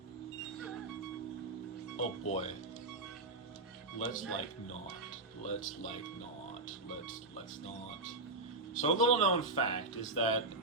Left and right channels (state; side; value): quieter; left; 3.0 dB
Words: Oh boy. Let's not. Let's not. So a little known fact is that